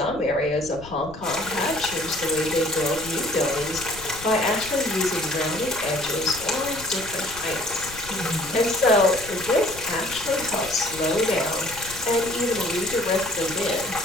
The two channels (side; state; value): left; noise; rumble, 16 dB below the sound